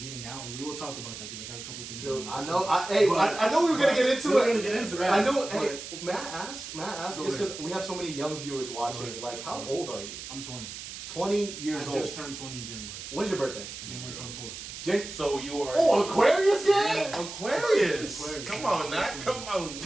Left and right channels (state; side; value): noise; right; hiss, 10 dB below the sound